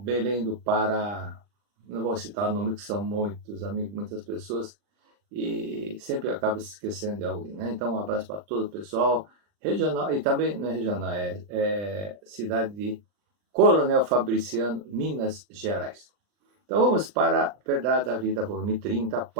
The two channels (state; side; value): late; left; 39 ms